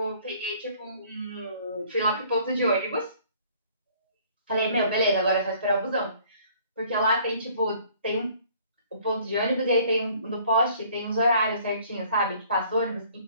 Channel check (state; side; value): inverted; both; correlation -0.57